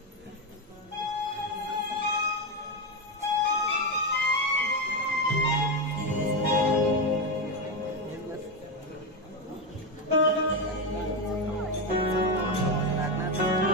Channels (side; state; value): both; normal; correlation 0.11